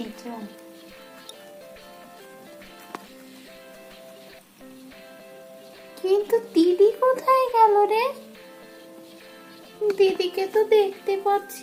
চল। কিন্তু দিদি কোথায় গেল রে? দিদিকে তো দেখতে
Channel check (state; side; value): identical; both; correlation 1.00